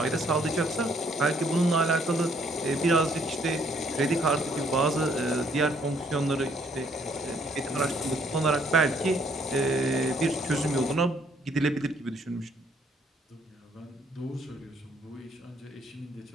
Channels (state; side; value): normal; both; correlation 0.66